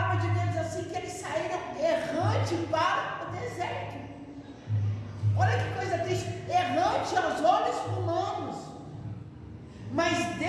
de Deus diz assim, que eles saíram errante para o deserto. Olha que coisa triste, errante aos olhos humanos, mas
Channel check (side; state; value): both; identical; correlation 1.00